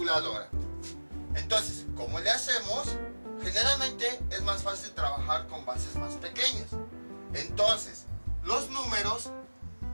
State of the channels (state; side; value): inverted; both; correlation -1.00